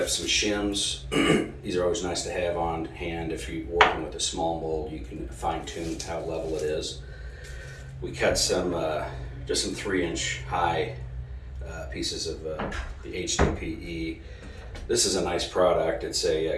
some shims. These are always nice to have on hand. If you're working with a small mold, you can fine tune how level it is. We cut just some 3-inch high pieces of the HDPE. This is a nice product. It's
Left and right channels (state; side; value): identical; both; correlation 1.00